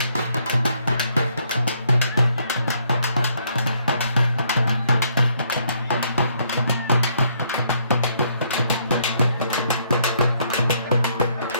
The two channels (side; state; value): both; inverted; correlation -0.70